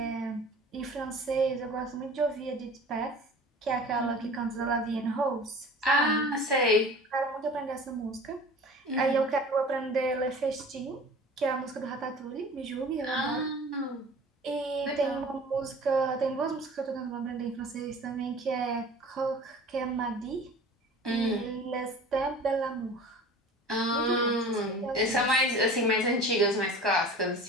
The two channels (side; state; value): both; normal; correlation 0.42